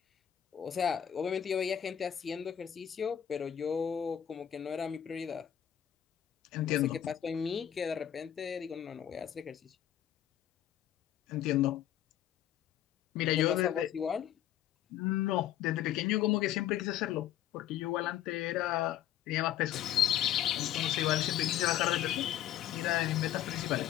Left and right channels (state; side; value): quieter; right; 11.0 dB